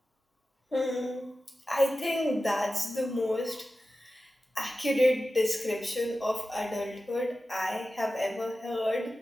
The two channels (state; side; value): normal; both; correlation 0.94